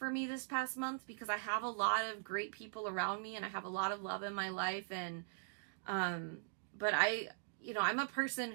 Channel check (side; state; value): left; silent; digital silence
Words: me this past month, because I have a lot of great people around me and I have a lot of love in my life, and but I'm a person